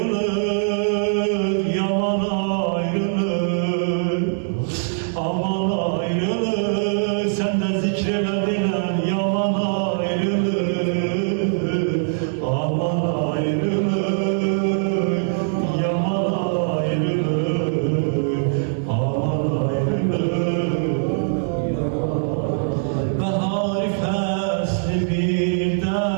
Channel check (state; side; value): silent; left; digital silence